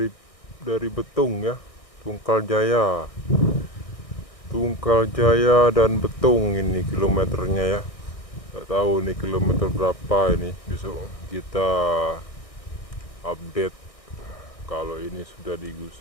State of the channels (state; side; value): late; right; 1.6 ms